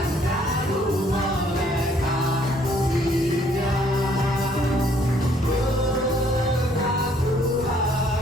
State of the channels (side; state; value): both; normal; correlation 0.64